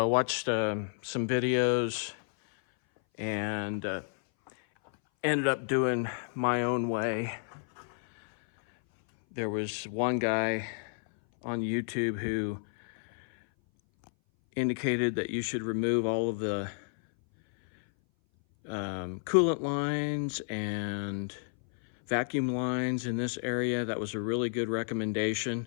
watched some videos and ended up doing my own way. There was one guy on YouTube who indicated that you should remove all of the coolant lines and vacuum lines in this area. That was a really good recommendation,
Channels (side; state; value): right; silent; 57 dB below the other